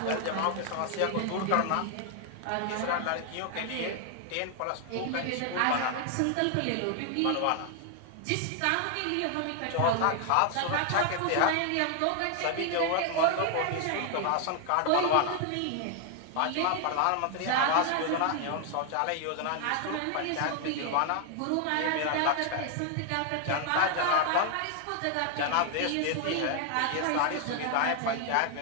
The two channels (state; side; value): different; both; correlation 0.00